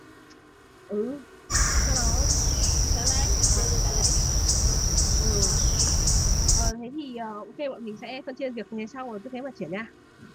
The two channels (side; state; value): both; identical; correlation 1.00